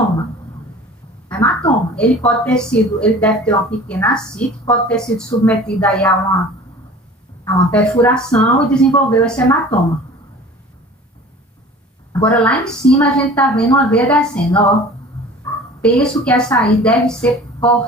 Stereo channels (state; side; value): normal; both; correlation 0.43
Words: Hematoma. Ele deve ter uma pequena ascite, pode ter sido submetido aí a uma perfuração e desenvolveu esse hematoma. Agora, lá em cima, a gente está vendo uma veia descendo, ó. Penso que essa aí deve ser